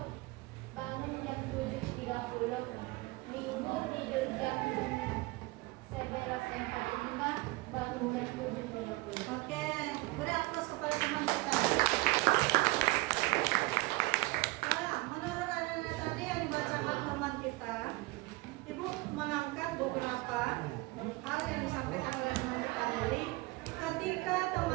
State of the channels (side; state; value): left; quieter; 22.4 dB